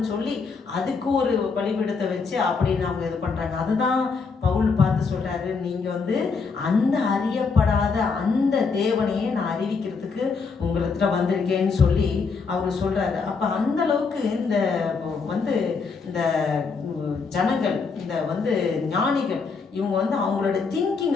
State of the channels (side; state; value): right; quieter; 4.9 dB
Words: சொல்லி அதுக்கு ஒரு பலிபீடத்தை வச்சு அப்படின்னு அவங்க இது பண்ணுறாங்க. அதுதான் பவுல் பார்த்து சொல்கிறாரு, நீங்கள் வந்து அந்த அறியப்படாத அந்த தேவனையே நான் அறிவிக்கிறதுக்கு உங்களிடத்துல வந்திருக்கேன்னு சொல்லி அவர் சொல்கிறாரு. அப்போ அந்த அளவுக்கு இந்த ஜனங்கள், இந்த ஞானிகள், இவங்க வந்து அவங்களோட